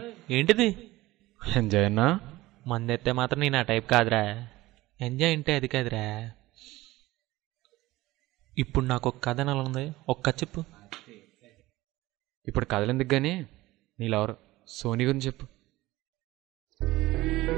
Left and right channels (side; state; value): left; quieter; 18.3 dB